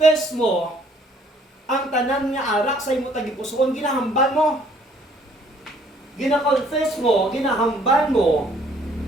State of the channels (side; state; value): both; normal; correlation 0.61